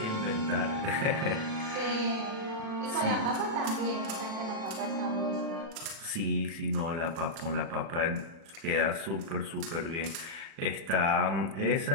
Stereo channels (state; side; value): late; left; 36 ms